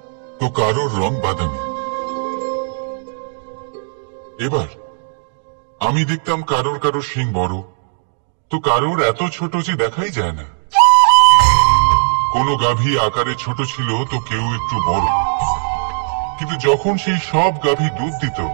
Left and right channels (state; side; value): silent; left; digital silence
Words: তো কারোর রং বাদামি। এবার আমি দেখতাম কারোর কারোর শিং বড় তো কারোর এত ছোট যে দেখাই যায় না। কোনো গাভী আকারে ছোট ছিল তো কেউ একটু বড়। কিন্তু যখন সেই সব গাভী দুধ দিত,